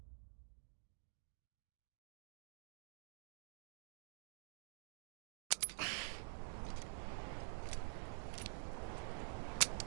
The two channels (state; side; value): silent; left; digital silence